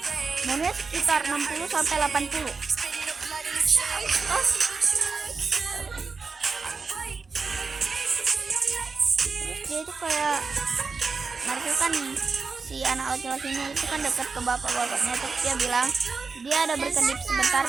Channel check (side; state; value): left; quieter; 4.7 dB